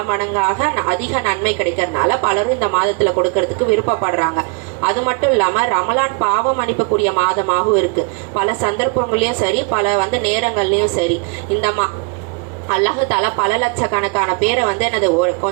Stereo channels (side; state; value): left; quieter; 32.1 dB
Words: மடங்காக அதிக நன்மை கிடைக்கிறதுனால பலரும் இந்த மாதத்துல கொடுக்கறதுக்கு விருப்பப்படுறாங்க. அது மட்டும் இல்லாம ரமலான் பாவம் மன்னிக்கக்கூடிய மாதமாகவும் இருக்கு. பல சந்தர்ப்பங்களையும் சரி, பல வந்து நேரங்கள்லயும் சரி, இந்த அல்லாஹ் தாலா பல லட்சக்கணக்கான பேரை வந்து என்னது ஒரு